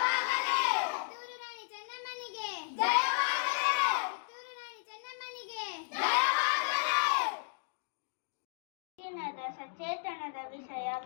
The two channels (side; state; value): right; silent; digital silence